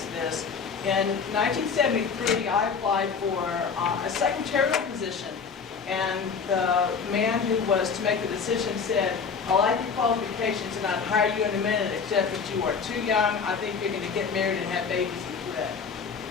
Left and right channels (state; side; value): quieter; right; 5.8 dB